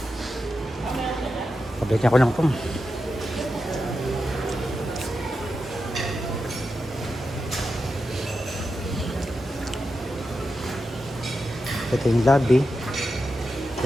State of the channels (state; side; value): normal; both; correlation 0.89